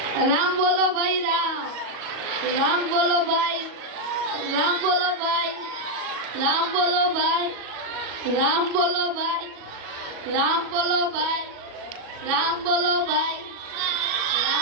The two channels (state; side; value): late; left; 37 ms